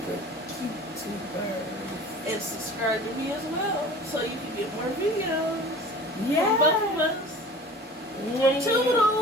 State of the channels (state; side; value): normal; both; correlation 0.41